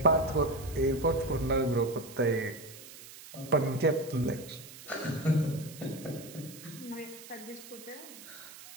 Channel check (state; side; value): noise; right; hiss, 16 dB below the sound